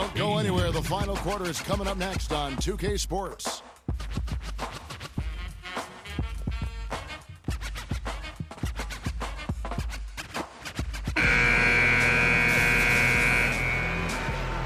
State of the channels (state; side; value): identical; both; correlation 1.00